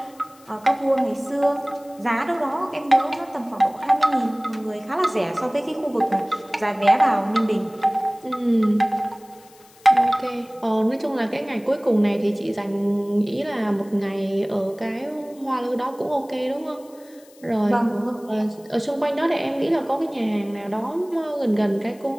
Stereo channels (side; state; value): left; noise; hiss, 27 dB below the sound